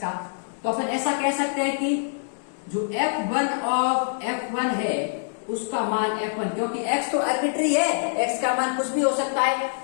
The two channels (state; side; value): silent; right; digital silence